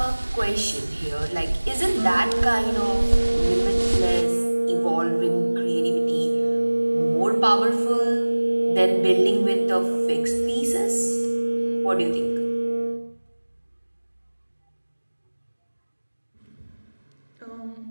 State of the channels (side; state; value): both; inverted; correlation -1.00